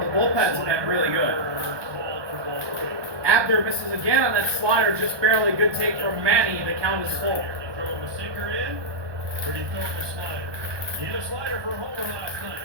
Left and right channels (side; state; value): left; late; 1.2 ms